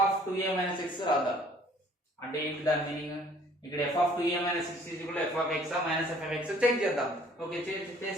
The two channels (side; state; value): both; normal; correlation 0.56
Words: of 2a minus x రాద్దాం. అంటే ఏంటి దాని మీనింగ్? ఇక్కడ f of 2a minus x is equal to f of x minus f of x check చేద్దాం. ఓకే,